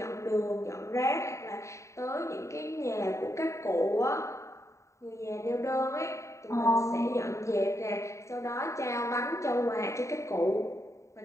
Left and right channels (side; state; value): right; late; 0.14 ms